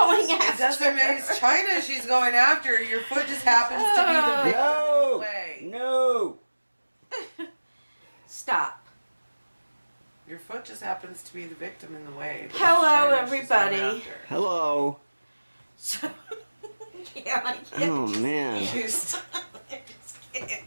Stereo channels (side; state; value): both; inverted; correlation -1.00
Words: after. It doesn't mean it's China she's going after. Your foot just happens to be the big No! way. No! Stop. Your foot just happens to be the victim in the way. but Hello, China's just going everybody. after. Hello. So, yeah, I can't. Oh man. I just can't.